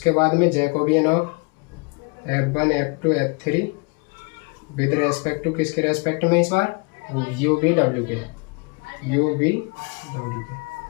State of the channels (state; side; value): quieter; right; 31.5 dB